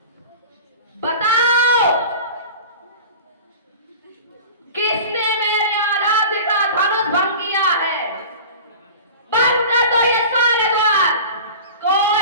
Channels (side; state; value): both; inverted; correlation -0.37